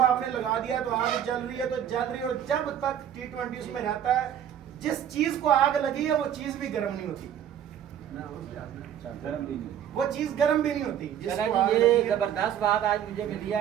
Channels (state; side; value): quieter; left; 9.9 dB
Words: आपने लगा दिया तो आग जल रही है तो जल रही है, और जब तक T20 उसमें रहता है, जिस चीज़ को आग लगी है वो चीज़ भी गर्म नहीं होती, गर्म भी नहीं, वो चीज़ गर्म भी नहीं होती। जिसको आग लगी ये है। जबरदस्त बात आज मुझे मिली है।